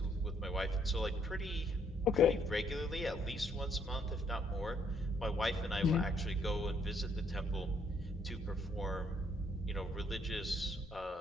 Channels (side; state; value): both; normal; correlation 0.69